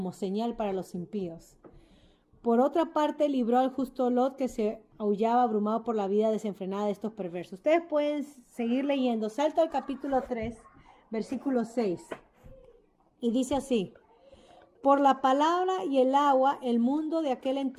señal para los impíos. Por otra parte, libró al justo Lot, que se aullaba abrumado por la vida desenfrenada de estos perversos. Ustedes pueden seguir leyendo. Salto al capítulo 3, versículo 6. Y dice así: por la palabra y el agua, el mundo de aquel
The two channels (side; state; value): both; identical; correlation 1.00